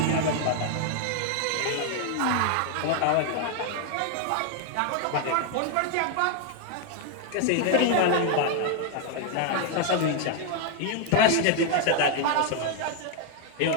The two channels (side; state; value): both; different; correlation 0.00